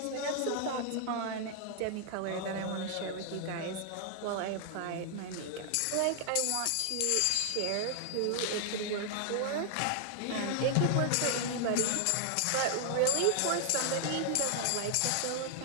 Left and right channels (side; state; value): both; different; correlation 0.00